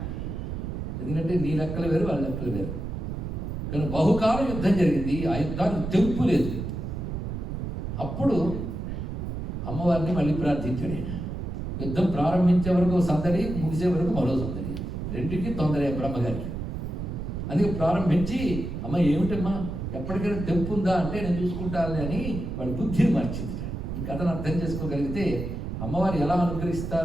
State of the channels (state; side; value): noise; right; rumble, 5 dB below the sound